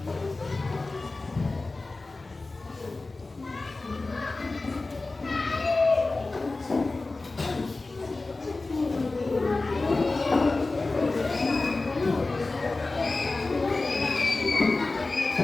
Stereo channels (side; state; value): right; quieter; 3.4 dB